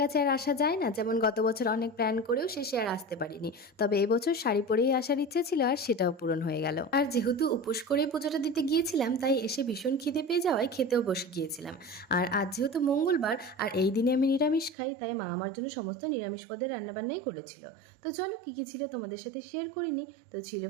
আর আসা যায় না। যেমন গত বছর অনেক প্ল্যান করেও শেষে আর আসতে পারিনি, তবে এবছর শাড়ি পরেই আসার ইচ্ছে ছিল আর সেটাও পূরণ হয়ে গেল। আর যেহেতু উপোস করে পুজোটা দিতে গিয়েছিলাম, তাই এসে ভীষণ খিদে পেয়ে যাওয়ায় খেতেও বসে গিয়েছিলাম। আর আজ যেহেতু মঙ্গলবার আর এই দিনে আমি নিরামিষ খাই, তাই মা আমার জন্য সমস্ত নিরামিষ পদের রান্নাবান্নাই করেছিল। তো চলো কী কী ছিল তোমাদের সাথে শেয়ার করিনি। তো ছিল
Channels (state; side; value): drops out; left; at 14.8 s